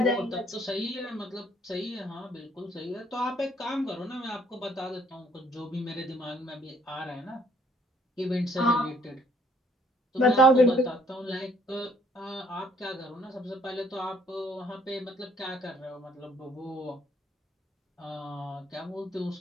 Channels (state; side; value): normal; both; correlation 0.63